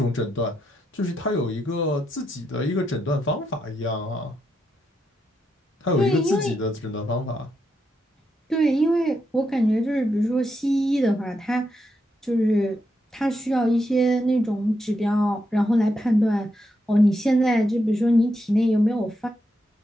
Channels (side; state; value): both; normal; correlation 0.82